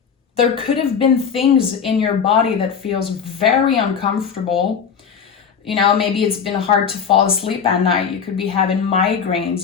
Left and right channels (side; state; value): right; quieter; 6.8 dB